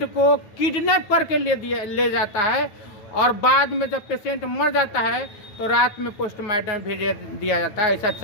को किडनैप करके ले जाता है, और बाद में जब पेशेंट मर जाता है तो रात में पोस्टमार्टम भेज दिया जाता है। ऐसा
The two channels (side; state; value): right; late; 9.1 ms